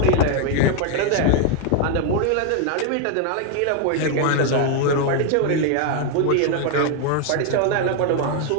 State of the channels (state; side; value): different; both; correlation 0.01